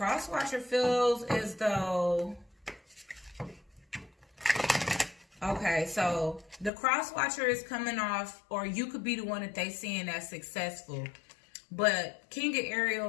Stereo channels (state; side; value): drops out; right; at 6.7 s